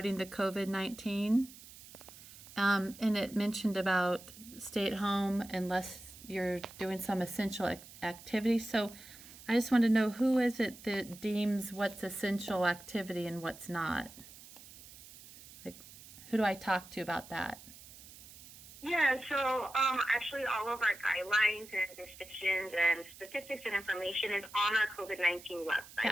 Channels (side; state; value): right; noise; hiss, 18 dB below the sound